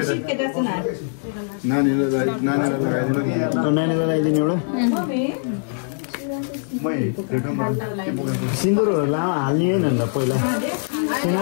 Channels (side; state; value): right; silent; digital silence